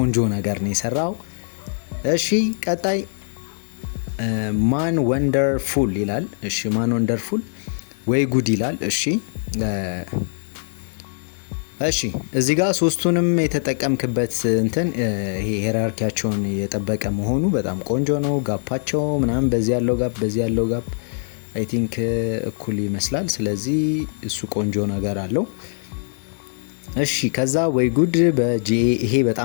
ነገር ነው የሰራው። እሺ ቀጣይ ማን ወንደርፉል ይላል። እሺ ማን ወንደርፉል ወይ ጉድ ይላል። እሺ እዚህ ጋር ሶስቱንም የተጠቀምክበት እንትን ይሄ ሄራርኪያቸውን የጠበቀ መሆኑ በጣም ቆንጆ ነው። ጋፓቸው ምናምን በዚህ ያለው ጋፕ አይ ቲንክ እኩል ይመስላል። ስለዚህ እሱ ቆንጆ ነገር አለው። እሺ ከዛ ወይ ጉድ በጂኤ ይሄ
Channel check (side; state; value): right; silent; 64 dB below the other